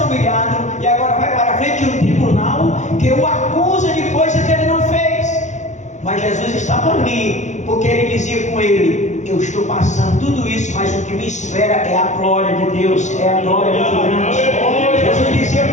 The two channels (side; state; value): right; late; 0.35 ms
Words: humilhado, e agora vai para a frente de um tribunal que o acusa de coisa que ele não fez. Mas Jesus estava ali, porque ele dizia com ele: eu estou passando tudo isso, mas o que me espera é a glória de Deus, é a glória muito grande. Jesus dizia